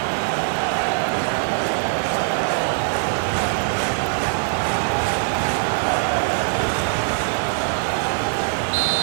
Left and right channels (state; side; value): silent; left; 64 dB below the other